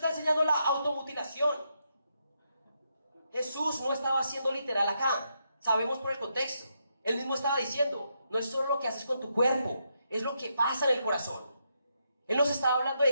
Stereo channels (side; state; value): both; inverted; correlation -0.80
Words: enseñando la automutilación. Jesús no estaba haciendo literal acá. Sabemos por el contexto. Él mismo estaba diciendo, no es solo lo que haces con tu cuerpo, es lo que pasa en el corazón. Él nos estaba hablando